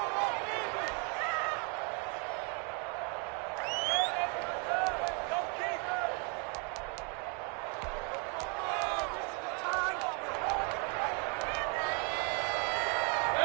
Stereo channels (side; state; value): left; quieter; 36.4 dB